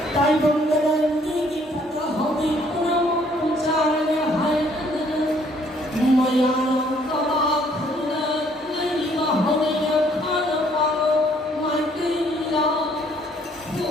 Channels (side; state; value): both; normal; correlation 0.64